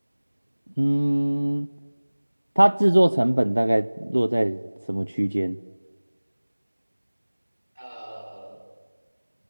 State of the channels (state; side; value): inverted; both; correlation -1.00